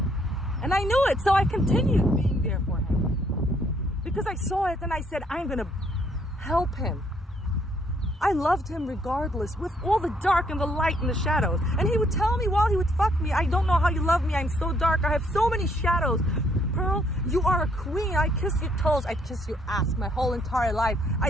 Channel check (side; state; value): both; normal; correlation 0.68